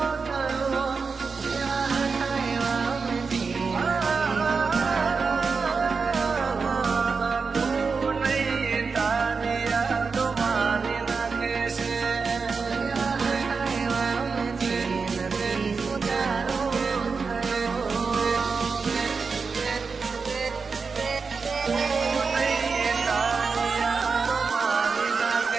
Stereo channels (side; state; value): left; quieter; 4.9 dB